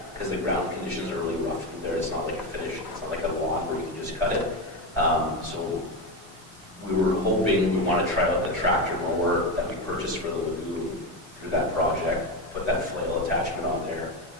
because the ground conditions are really rough through there. It's not like a finish. It's not like a lawn where you can just cut it. So we were hoping we want to try out the tractor mower that we purchased for the lagoon through that project, put that flail attachment on there,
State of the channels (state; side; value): normal; both; correlation 0.14